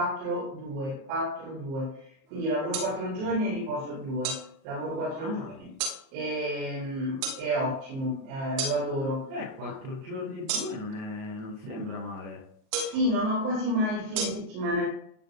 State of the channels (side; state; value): left; late; 37 ms